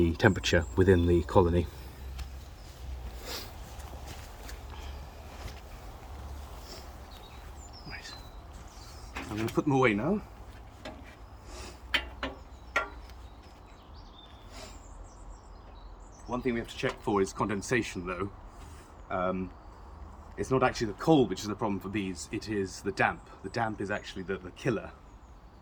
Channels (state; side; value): identical; both; correlation 1.00